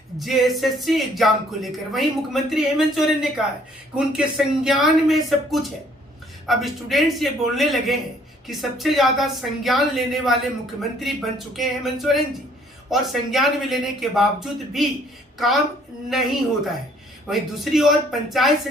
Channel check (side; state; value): both; normal; correlation 0.61